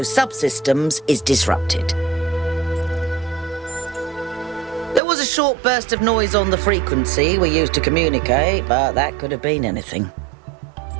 subsystems is disrupted. There was a short burst of noise on the frequency we used to communicate, but that could have been anything.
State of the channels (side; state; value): left; drops out; at 5.0 s